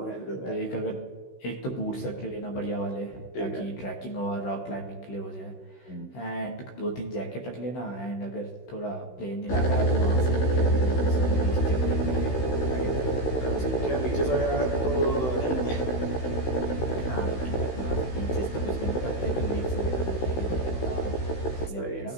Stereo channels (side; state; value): right; late; 16 ms